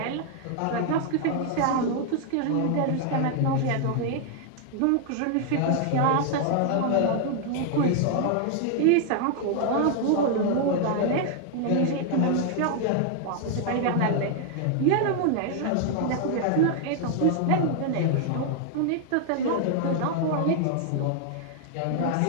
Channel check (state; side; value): different; both; correlation 0.00